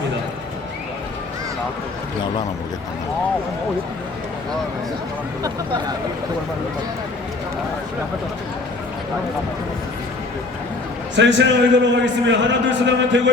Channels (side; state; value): right; quieter; 3.4 dB